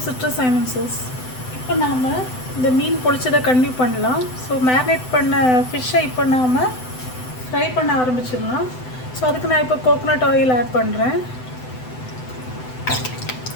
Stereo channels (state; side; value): late; right; 7.9 ms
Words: citrus silencers. இப்போ நாம் இந்த மீன் பொழிச்சதை கண்டினியூ பண்ணலாம். ஸோ மேரினேட் பண்ண ஃபிஷ்ஷை இப்போ நாம் ஃப்ரை பண்ண ஆரம்பிச்சிடலாம். ஸோ அதுக்கு நான் இப்போ கோகோனட் ஆயில் ஆட் பண்ணுறேன்.